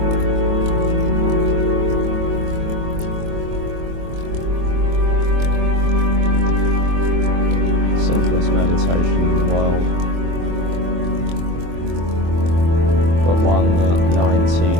Simplest meditation in the world, but one that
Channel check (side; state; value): left; late; 24 ms